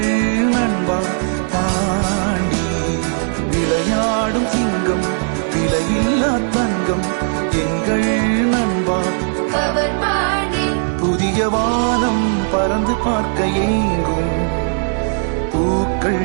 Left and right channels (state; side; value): silent; left; 62 dB below the other